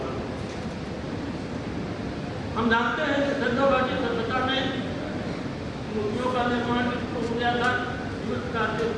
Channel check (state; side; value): identical; both; correlation 1.00